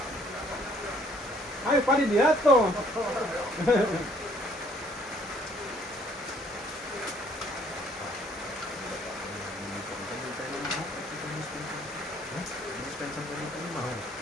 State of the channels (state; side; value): normal; both; correlation 0.62